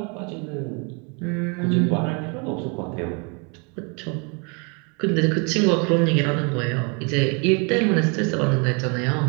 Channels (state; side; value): quieter; left; 33.9 dB